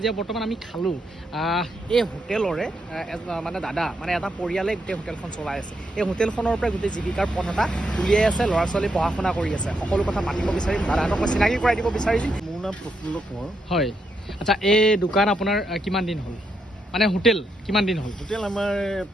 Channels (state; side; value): normal; both; correlation 0.80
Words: বৰ্তমান আমি খালোঁ এই হোটেলৰে মানে দাদা মানে এটা পৰিয়ালে গোটেই হোটেলখন চলাই আছে এই হোটেলখনৰ পৰা গোটেই জীৱিকাৰ পথ এটা উলিয়াই আছে ল'ৰা ছোৱালী পঢ়া শুনা কৰি আছে সকলো কথা মাতিব বিচাৰিম দাদাহঁতক মই চিনাকি কৰাই দিব বিচাৰিম মোৰ নাম প্ৰফুল্ল কোঁৱৰ হয় আচ্ছা এই দোকান আপোনাৰ কিমান দিন হ'ল মানে হোটেল কিমান দিন হ'ল হোটেল আমাৰ